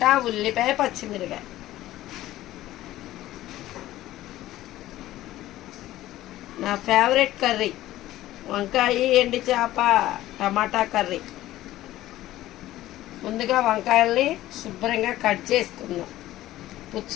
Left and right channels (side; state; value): right; quieter; 15.0 dB